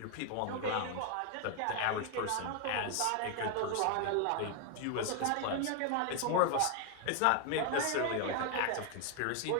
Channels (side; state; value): both; different; correlation 0.01